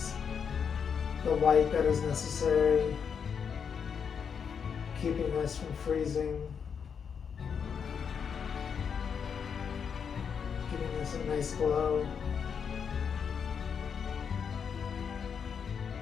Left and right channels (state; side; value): quieter; right; 6.8 dB